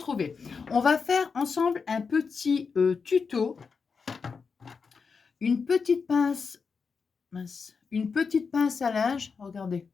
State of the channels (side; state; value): right; quieter; 5.3 dB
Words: On va faire ensemble un petit tuto. Une petite pince, une petite pince à linge. Regardez,